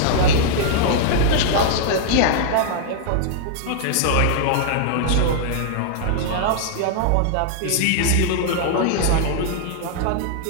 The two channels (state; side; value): different; both; correlation -0.01